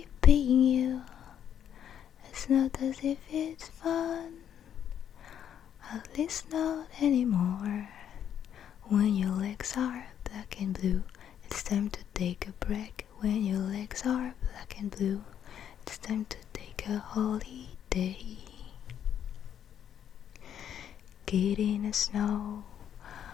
paying you. It's not as if it's fun, at least not anymore. When your legs are black and blue, it's time to take a break. When your legs are black and blue, it's time to take a holiday. Get in the snow,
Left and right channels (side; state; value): right; quieter; 9.4 dB